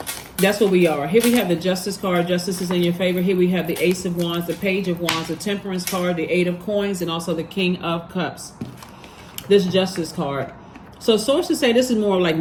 that's what we are. Here we have the Justice card. Justice is in your favor. Here we have the Ace of Wands, the Page of Wands, the Temperance card, the Eight of Coins, and also the King of Cups. This Justice card. So sources say this is more like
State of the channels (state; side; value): identical; both; correlation 1.00